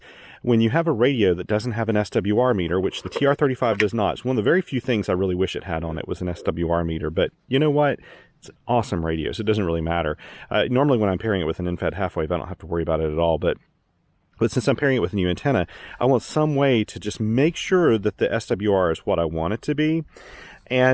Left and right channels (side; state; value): both; identical; correlation 1.00